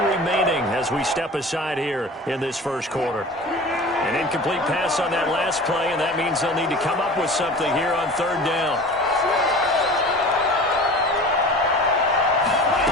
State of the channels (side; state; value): both; normal; correlation 0.38